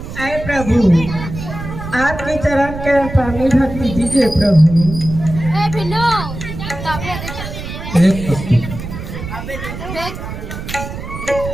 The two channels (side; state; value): right; noise; rumble, 8 dB below the sound